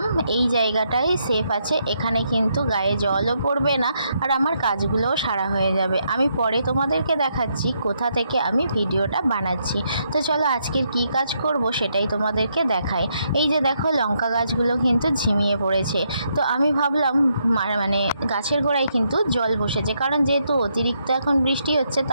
এই জায়গাটাই সেফ আছে, এখানে কিন্তু গায়ে জলও পড়বে না আর আমার কাজগুলোও সারা হয়ে যাবে। আমি পরে তোমাদেরকে দেখাচ্ছি কোথা থেকে আমি ভিডিওটা বানাচ্ছি। তো চলো আজকের কি কাজ করব সেটাই তোমাদেরকে দেখাই। এই যে দেখো, লঙ্কা গাছগুলো কিন্তু ঝিমিয়ে পড়েছে। তো আমি ভাবলাম মানে গাছের গোড়ায় কিন্তু জল বসেছে, কারণ যেহেতু অতিরিক্ত এখন বৃষ্টি হচ্ছে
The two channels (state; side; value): inverted; both; correlation -0.77